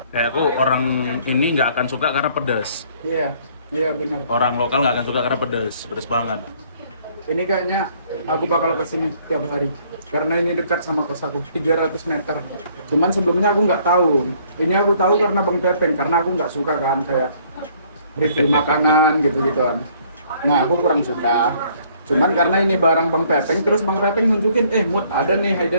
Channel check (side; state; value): both; inverted; correlation -0.62